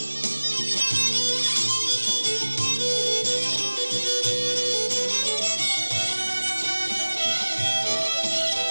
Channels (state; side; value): inverted; both; correlation -1.00